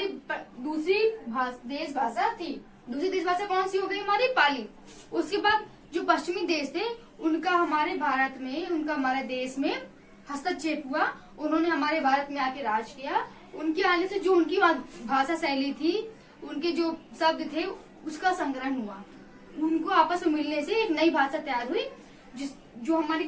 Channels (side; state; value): both; identical; correlation 1.00